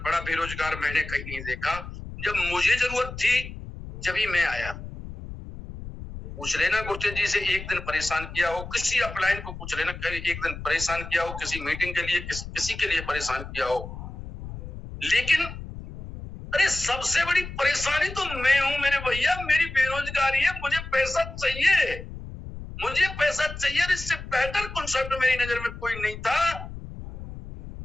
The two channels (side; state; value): left; noise; rumble, 11 dB below the sound